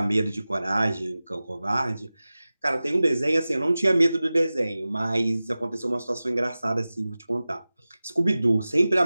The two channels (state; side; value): inverted; both; correlation -0.97